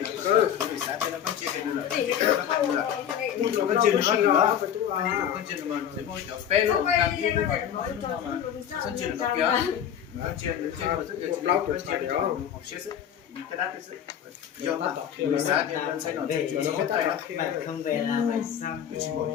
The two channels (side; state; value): right; quieter; 9.4 dB